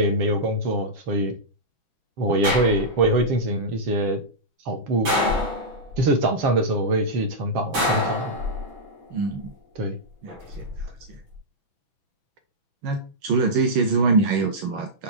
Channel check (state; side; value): late; left; 6.1 ms